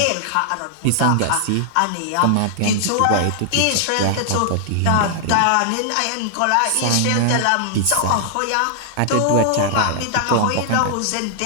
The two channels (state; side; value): different; both; correlation -0.01